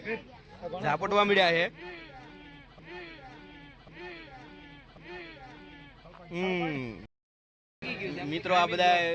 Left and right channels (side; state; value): both; identical; correlation 1.00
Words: ઝાપટવા મળ્યા છે. મિત્રો આ બધા